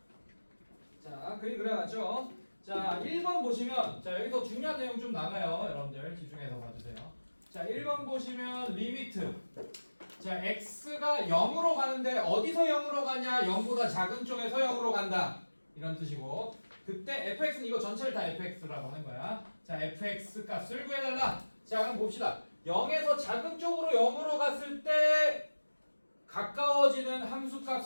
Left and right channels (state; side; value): inverted; both; correlation -1.00